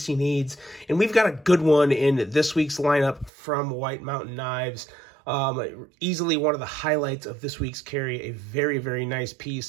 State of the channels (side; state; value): left; drops out; at 3.3 s